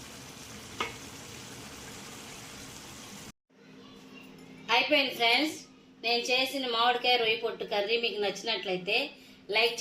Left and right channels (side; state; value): both; identical; correlation 1.00